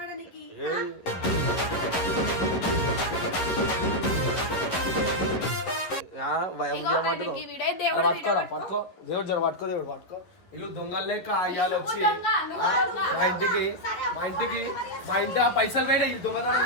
పట్టుకోరా పట్టుకో దేవుడు జర పట్టుకో దేవుడు పట్టుకో. ఇల్లు దొంగలు లేక అయ్యాలు వచ్చి మా ఇంటి ఆ పైసలు వేడే ఈ దొంగతనం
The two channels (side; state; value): right; late; 11 ms